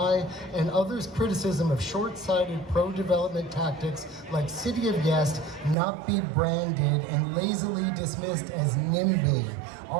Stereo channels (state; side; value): drops out; left; at 5.8 s